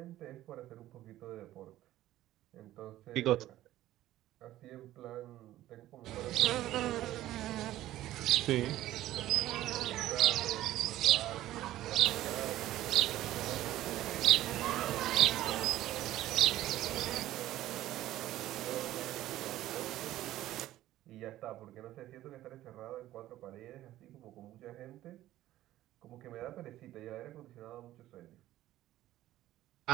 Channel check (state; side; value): quieter; left; 14.5 dB